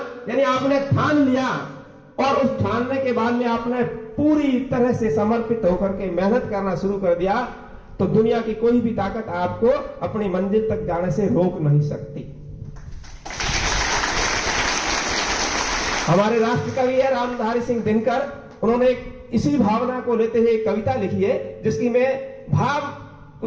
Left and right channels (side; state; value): both; identical; correlation 1.00